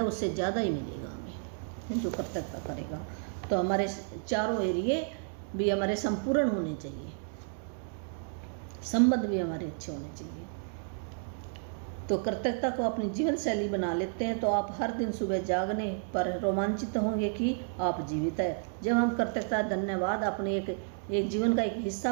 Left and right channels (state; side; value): silent; left; 57 dB below the other